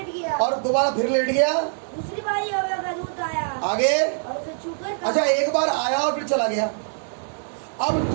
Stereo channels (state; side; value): silent; left; 63 dB below the other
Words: गया। और दोबारा फिर लेट गया। दूसरी बार यहोवा का दूत आया आगे। और उसे छूकर कहा, अच्छा, एक बार आया और फिर चला गया, अब